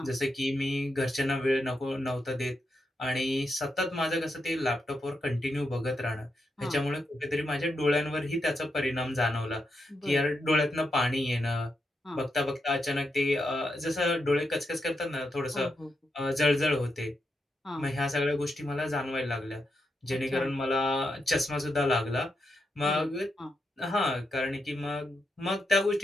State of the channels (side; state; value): both; normal; correlation 0.83